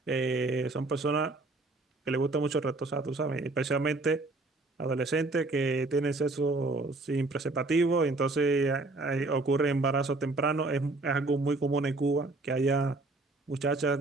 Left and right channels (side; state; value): left; quieter; 3.2 dB